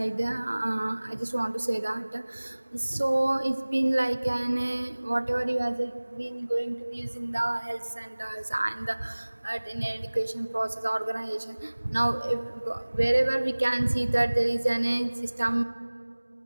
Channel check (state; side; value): inverted; both; correlation -1.00